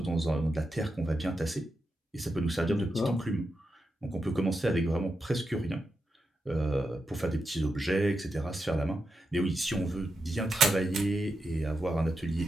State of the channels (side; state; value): both; normal; correlation 0.87